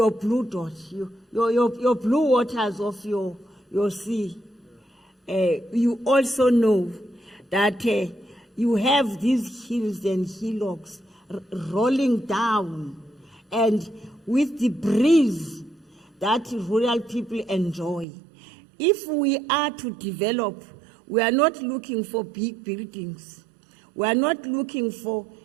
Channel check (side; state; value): left; drops out; at 18.1 s